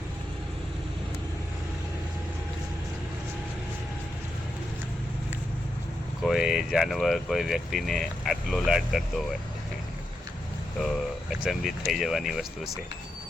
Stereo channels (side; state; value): both; normal; correlation 0.85